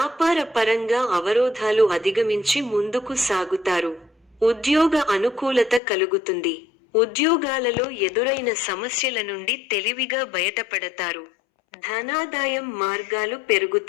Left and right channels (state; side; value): drops out; right; at 5.8 s